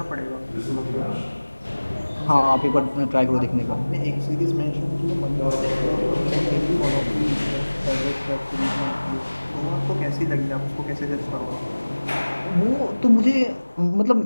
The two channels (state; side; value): inverted; both; correlation -1.00